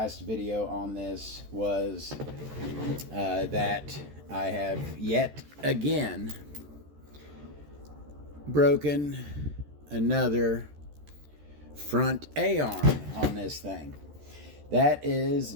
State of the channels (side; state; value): left; late; 14 ms